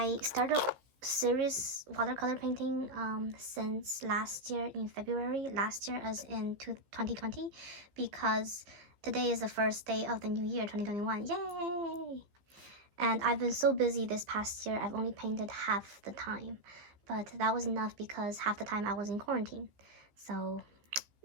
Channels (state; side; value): late; left; 15 ms